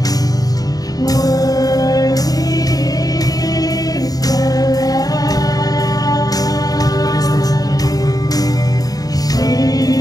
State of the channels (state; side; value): late; right; 0.18 ms